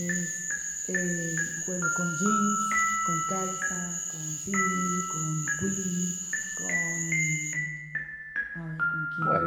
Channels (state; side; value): identical; both; correlation 1.00